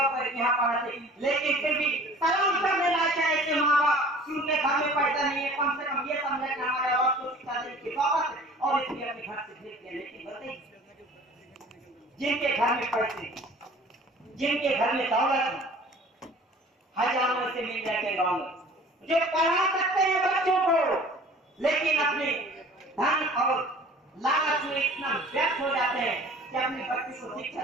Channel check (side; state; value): both; normal; correlation 0.47